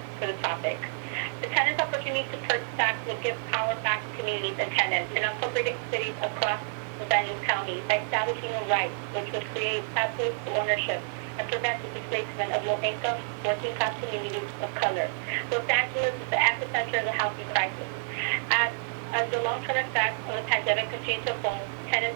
for the topic. The tenants' opportunity to purchase tax would give power back to communities and tenants in unincorporated cities across the Vernon County by establishing a right which would create pathways to ownership and prevent the displacement of low-income, working-class communities of color. Los Angeles is the epicenter of the housing crisis. As the long-term effects of the pandemic continue to unfold,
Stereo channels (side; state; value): left; silent; digital silence